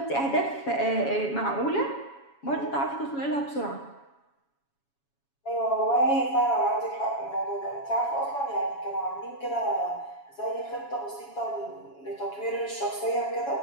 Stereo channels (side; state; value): right; late; 7.2 ms